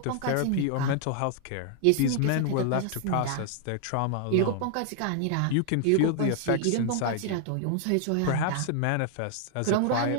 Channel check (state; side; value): different; both; correlation 0.00